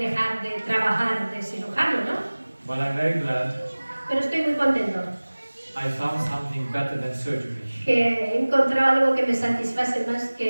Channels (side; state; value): both; inverted; correlation -1.00